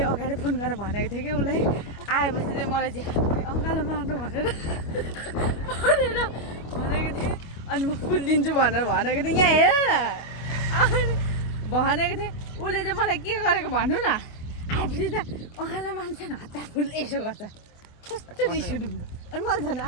अगाडि फोन गरेर भनेको थिएँ कि उसलाई आएपछि चाहिँ मलाई चाहिँ अङ्गालो मार्नु भनेर भनेको थिएँ अनि म फुल दिन्छु भनेर भनेको थिएँ यहाँ हेर न भनेको थिएँ उसले चाहिँ मलाई के गरेको भन्नु न आएपछि त अङ्गालो मान्छे हतार फुल यसो गर्छ कस्तो रिस उठ्यो अनि मैले झन्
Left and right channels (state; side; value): late; right; 25 ms